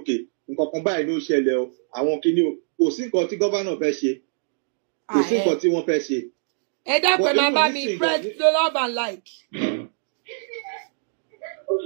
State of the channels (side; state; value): left; silent; digital silence